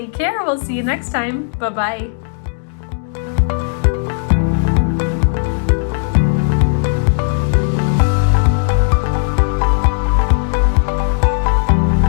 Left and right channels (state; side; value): silent; right; digital silence